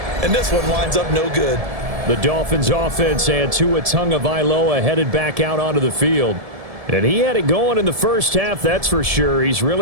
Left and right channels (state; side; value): late; left; 1.7 ms